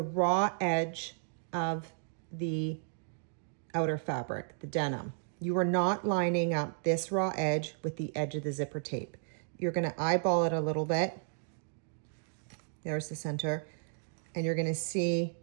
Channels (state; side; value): silent; left; digital silence